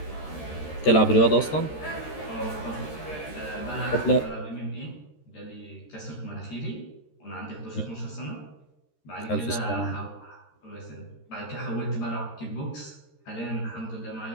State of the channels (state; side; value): late; right; 13 ms